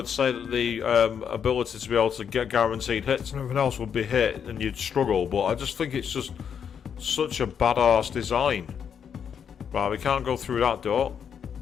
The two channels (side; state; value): right; quieter; 7.7 dB